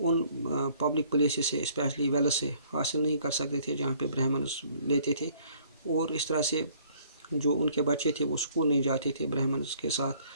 پبلک پلیسز سے اسپیشلی ویلز سے حاصل نہیں کر سکتے تھے جہاں پہ برہمنس لیتے تھے، اور اس طرح سے جو ان کے بچے تھے وہ اسکول نہیں جاتے تھے برہمنس کے ساتھ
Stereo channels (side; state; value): both; inverted; correlation -0.59